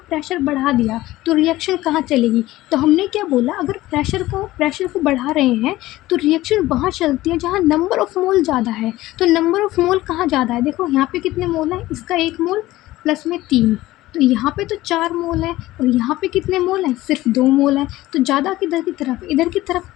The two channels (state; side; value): quieter; right; 16.9 dB